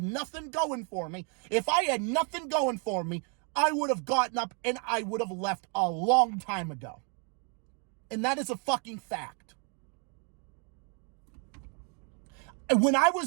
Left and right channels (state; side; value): quieter; left; 38.4 dB